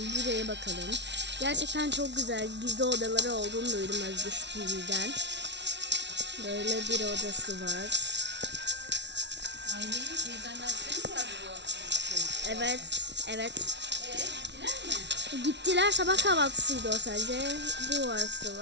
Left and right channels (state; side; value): late; left; 0.51 ms